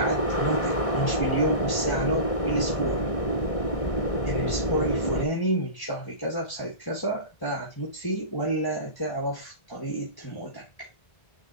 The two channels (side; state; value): right; late; 1.6 ms